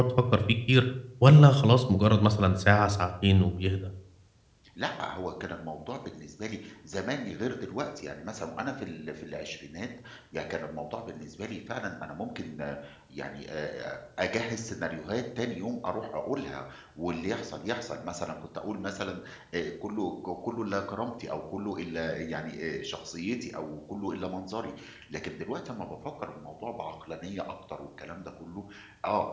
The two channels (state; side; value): identical; both; correlation 1.00